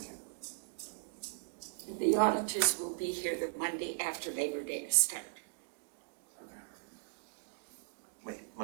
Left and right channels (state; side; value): silent; left; digital silence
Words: you. The auditors will be here the Monday after Labor Day to start. Wait,